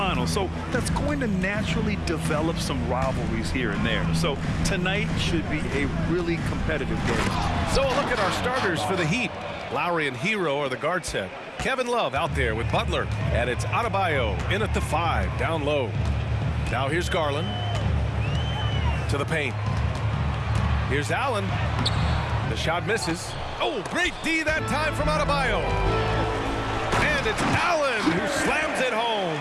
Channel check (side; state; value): both; identical; correlation 1.00